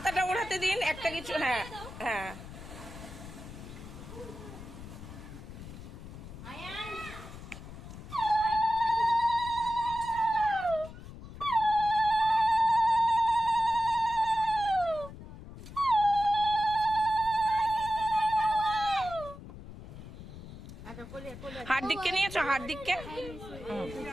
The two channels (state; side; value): noise; left; rumble, 14 dB below the sound